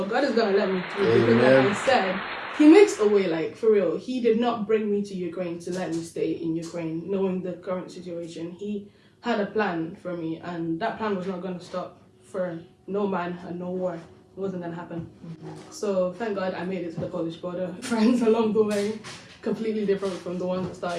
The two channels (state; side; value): identical; both; correlation 1.00